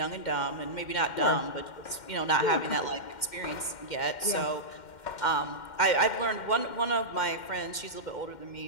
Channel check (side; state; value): right; late; 2.1 ms